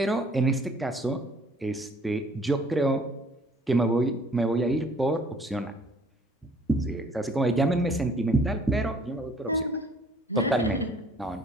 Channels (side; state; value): both; normal; correlation 0.57